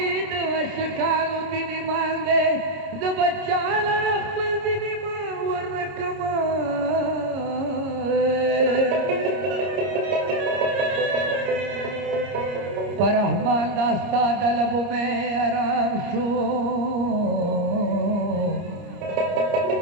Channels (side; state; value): left; late; 30 ms